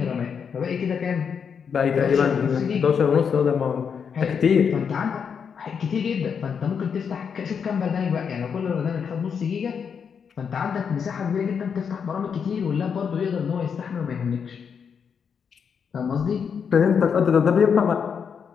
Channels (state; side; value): quieter; right; 6.8 dB